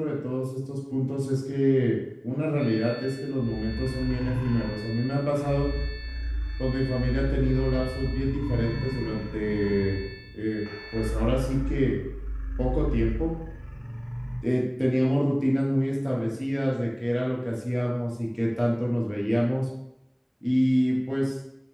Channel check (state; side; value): identical; both; correlation 1.00